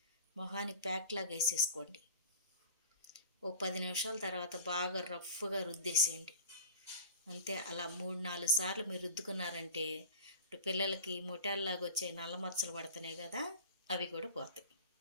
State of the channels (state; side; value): inverted; both; correlation -0.39